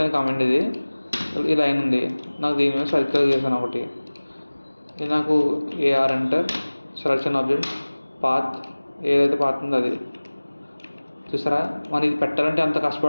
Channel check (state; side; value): inverted; both; correlation -1.00